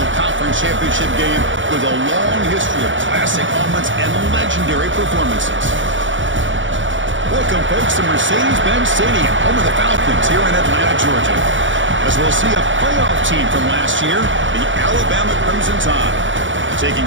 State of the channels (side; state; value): left; late; 0.56 ms